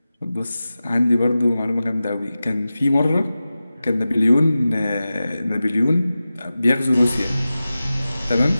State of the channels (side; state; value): both; inverted; correlation -0.95